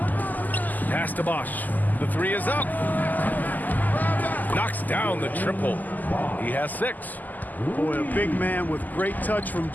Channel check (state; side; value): late; right; 0.083 ms